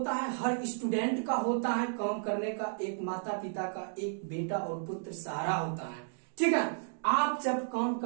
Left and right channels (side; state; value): left; silent; digital silence